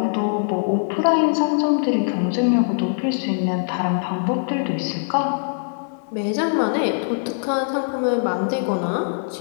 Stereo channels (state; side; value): silent; right; digital silence